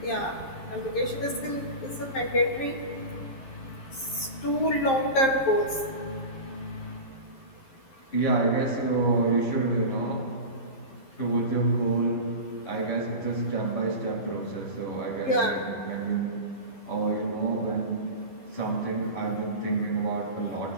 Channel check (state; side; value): late; right; 11 ms